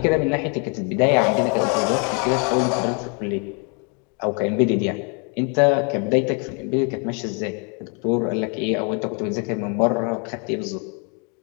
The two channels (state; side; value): quieter; right; 36.3 dB